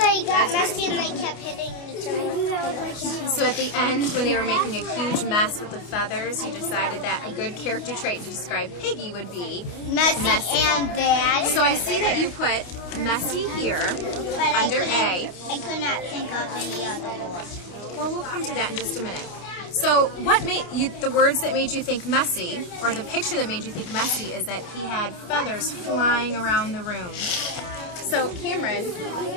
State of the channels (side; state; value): right; late; 29 ms